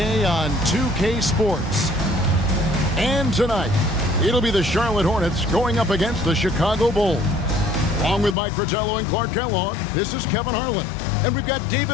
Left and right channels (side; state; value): right; drops out; at 8.3 s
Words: on 2K Sports. And tonight, it'll be the Charlotte Hornets going up against the Chicago Bulls. Along with Mike Fratello and Clark Kellogg, this is Kevin Harlan. And we've got